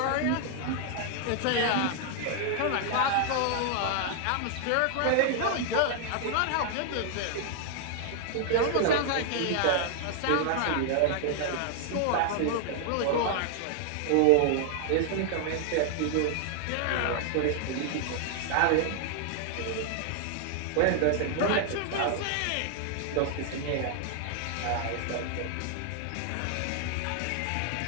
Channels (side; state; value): both; different; correlation 0.00